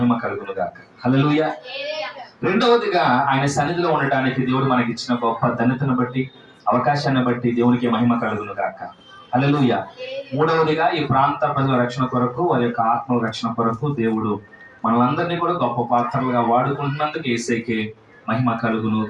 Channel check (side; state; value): both; identical; correlation 1.00